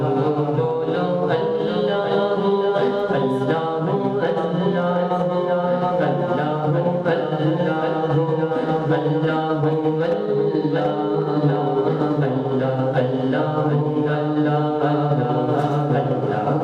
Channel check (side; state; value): both; identical; correlation 1.00